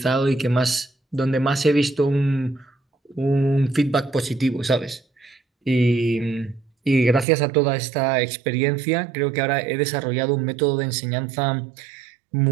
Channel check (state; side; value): drops out; left; at 7.2 s